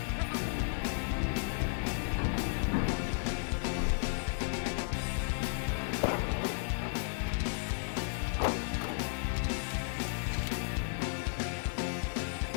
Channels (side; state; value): right; silent; digital silence